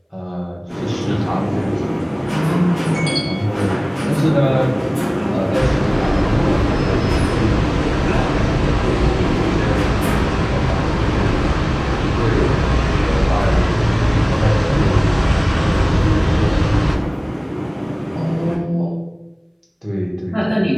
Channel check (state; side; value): identical; both; correlation 1.00